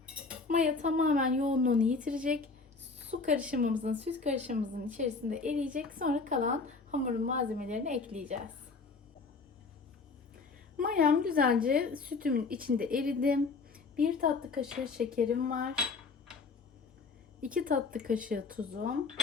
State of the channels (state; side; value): quieter; right; 4.3 dB